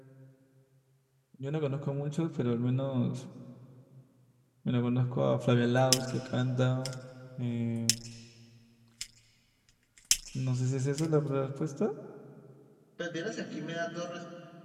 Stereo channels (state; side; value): identical; both; correlation 1.00